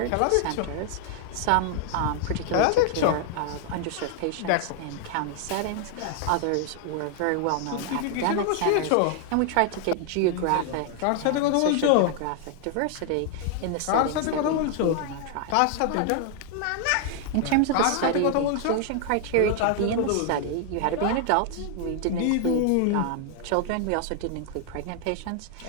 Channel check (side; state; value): both; different; correlation 0.00